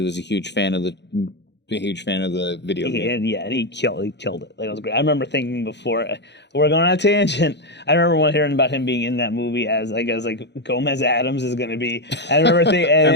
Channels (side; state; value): right; late; 0.50 ms